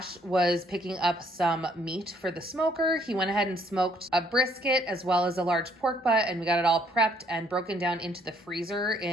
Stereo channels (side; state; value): both; normal; correlation 0.65